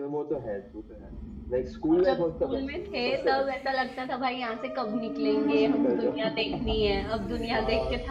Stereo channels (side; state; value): both; identical; correlation 1.00